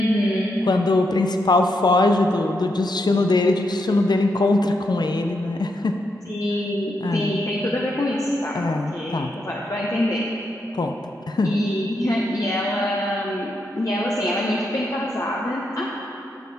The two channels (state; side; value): normal; both; correlation 0.81